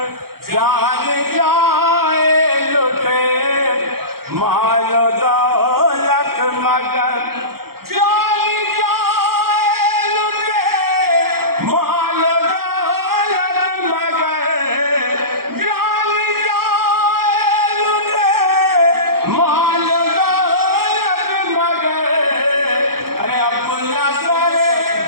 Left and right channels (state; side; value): late; left; 0.94 ms